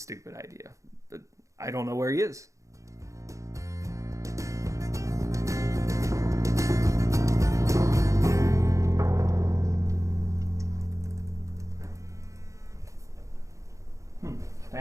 idea, but I don't know where he is.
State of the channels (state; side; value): late; left; 0.15 ms